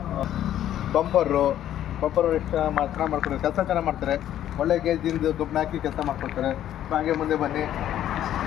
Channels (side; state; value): right; quieter; 11.6 dB